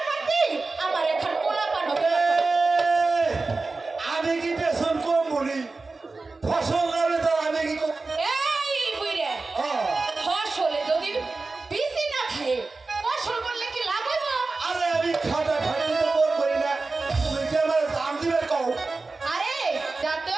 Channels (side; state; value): left; quieter; 3.7 dB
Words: পারতি আমার এখন পোলা পানো আমি কি পেছন কম বলি ফসল নামে তো আমি কি এই বুইরে ফসলে যদি বিসি না খায় ফসল করলে কি লাভ হইব আরে আমি খাটা খাটি তো কম করি না তুমি কি আমার দাম দিবে কও আরে